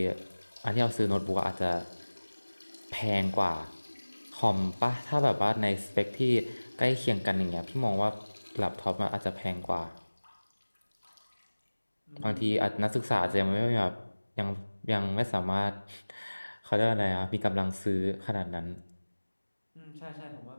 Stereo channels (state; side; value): inverted; both; correlation -1.00